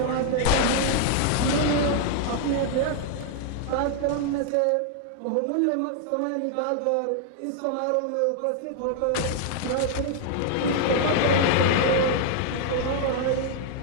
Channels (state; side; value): different; both; correlation 0.00